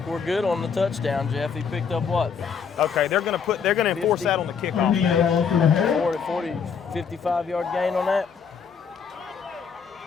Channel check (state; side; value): quieter; right; 6.4 dB